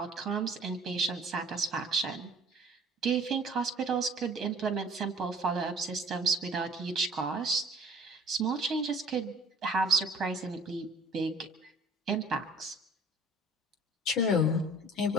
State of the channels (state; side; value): normal; both; correlation 0.51